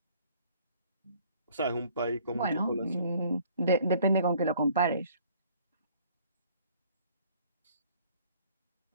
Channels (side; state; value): both; inverted; correlation -0.57